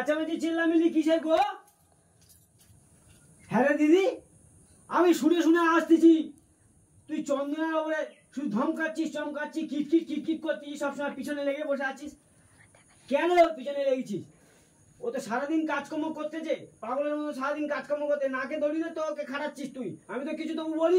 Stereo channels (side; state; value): both; identical; correlation 1.00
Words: চিল্লামিল্লি কিসের গো? হ্যাঁ রে দিদি, আমি শুনে শুনে আসতেছি তুই চন্দনার ওপরে শুধু ধমকাচ্ছিস চমকাচ্ছিস, কিটকিট কিটকিট করছিস, সবসময় পিছনে লেগে বসে আছিস। কেন পিছনে লেগেছিস? ও তো সারাদিন কাজকর্ম করতেছে, পাগলের মতো সারাদিন কাজকর্ম করতে, নাকে দড়ি দিয়ে তো ওকে খাটাচ্ছিস তুই। আমি তো কিছু তবু